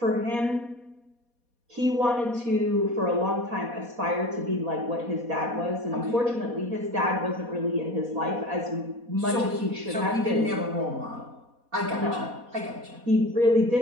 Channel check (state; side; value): late; left; 4.2 ms